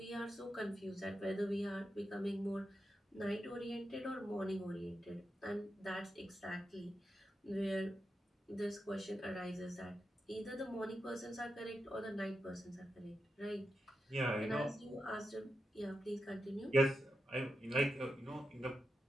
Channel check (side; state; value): both; normal; correlation 0.88